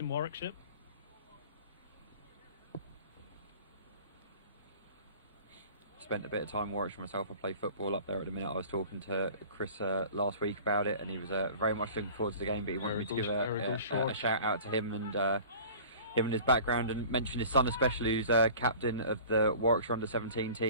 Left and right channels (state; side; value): inverted; both; correlation -0.43